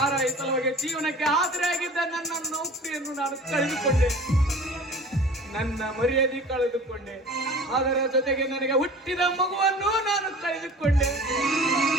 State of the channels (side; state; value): both; normal; correlation 0.42